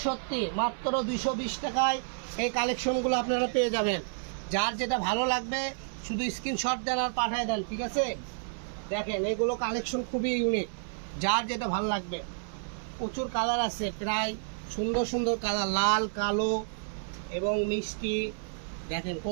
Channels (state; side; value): silent; left; 58 dB below the other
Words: সত্যি মাত্র 220 টাকায় এই কালেকশনগুলো আপনারা পেয়ে যাবেন। যার যেটা ভালো লাগবে শুধু স্ক্রিনশট দেন আর পাঠিয়ে দেন, ঠিক আছে? দেখেন, এগুলো কালেকশন খুবই ইউনিক। যার যেটা ভালো লাগবে, প্রচুর কালার আছে, প্রায় সুন্দর সুন্দর কালার, লাল, কালো এবং মিষ্টি। দেখেন